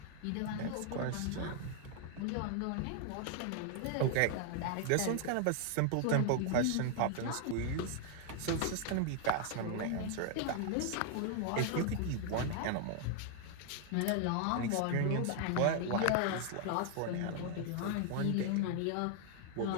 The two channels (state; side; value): different; both; correlation 0.00